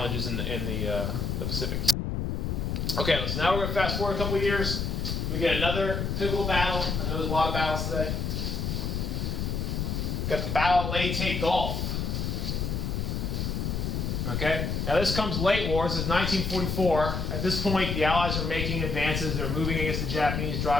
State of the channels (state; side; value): noise; left; rumble, 1 dB below the sound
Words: in the Pacific. Okay, so now we're going to fast forward a couple of years. We get another pivotal battle. I know there's a lot of battles today. We got the Battle of Leyte Gulf. Okay, now this comes late war. This is 1944. At this point, the Allies are making advances. They're moving against the Japanese,